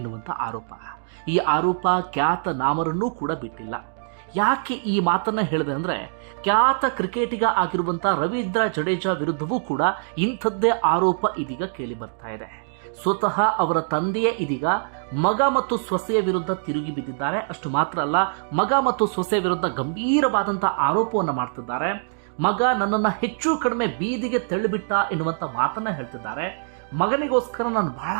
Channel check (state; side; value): silent; left; digital silence